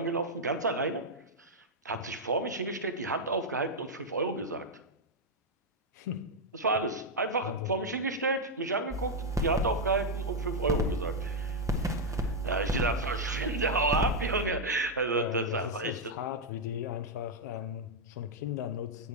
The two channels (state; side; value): normal; both; correlation -0.01